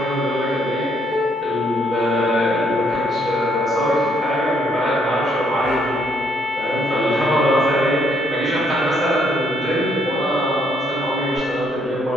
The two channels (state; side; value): normal; both; correlation 0.70